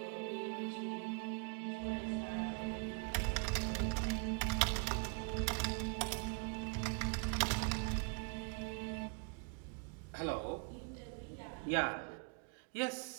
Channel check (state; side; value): quieter; left; 34.5 dB